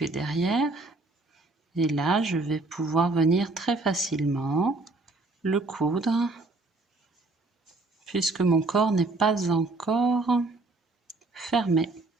derrière. Et là, je vais pouvoir venir très facilement le coudre, puisque mon corps n'est pas encore fermé.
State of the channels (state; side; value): quieter; left; 3.2 dB